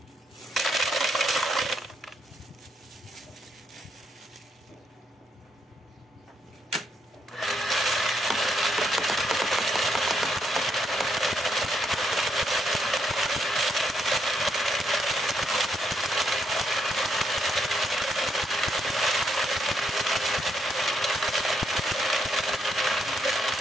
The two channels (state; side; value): normal; both; correlation 0.77